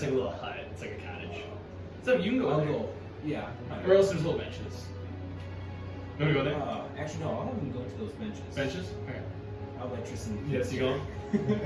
like a little hut. It's like a cottage. So you can go I'll in there. go. Yeah. Or else there's little benches. You want to go there? Actually, no. I'll have him go to those benches. Benches? Okay. I'll let Tristan. Yes, you go.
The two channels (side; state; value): both; identical; correlation 1.00